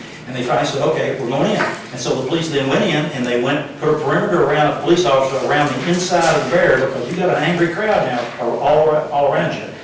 And they finally said, okay, we're going in. And so the police then went in, and they put a perimeter around a police officer around the inside of the barrier, because you've got an angry crowd now all around you.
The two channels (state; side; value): identical; both; correlation 1.00